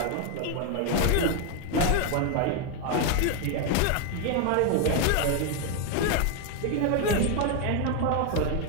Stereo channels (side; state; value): both; different; correlation 0.01